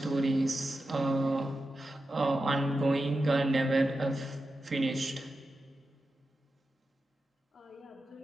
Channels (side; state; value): both; normal; correlation 0.91